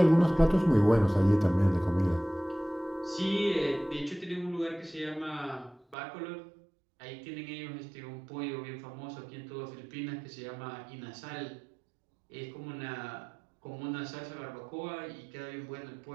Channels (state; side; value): drops out; left; at 6.0 s